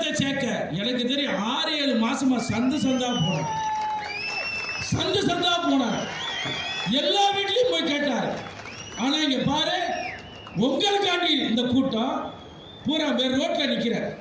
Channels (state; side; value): identical; both; correlation 1.00